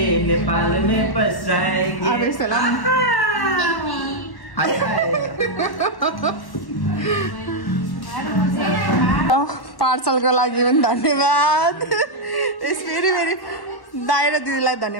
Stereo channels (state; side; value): late; right; 1.1 ms